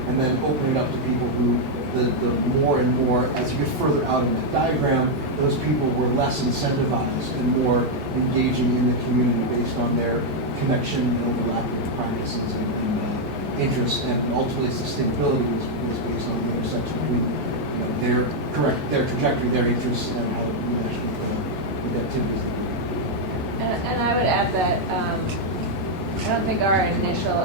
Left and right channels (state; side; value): normal; both; correlation -0.01